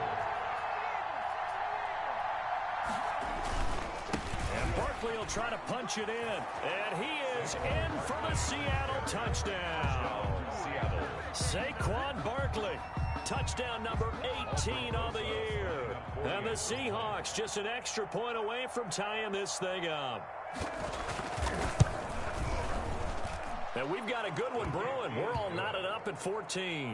And Barkley will try to punch it in. And he is in for the Seattle touchdown. Seattle. Saquon Barkley. Touchdown number 18 on the year. And the Seahawks just an extra point away from tying this thing up. And we've got a good one brewing. We're all knotted up at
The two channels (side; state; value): both; identical; correlation 1.00